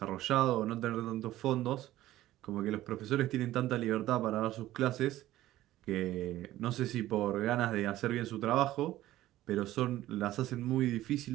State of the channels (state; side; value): quieter; left; 14.9 dB